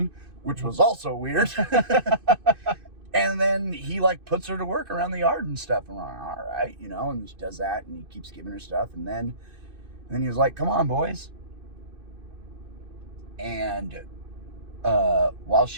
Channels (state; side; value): late; left; 2.5 ms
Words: which was also weird. And then he like puts her to work around the yard and stuff. And we're like, all right, you know, and she does that, and he keeps giving her stuff. And then he was like, come on, boys. And while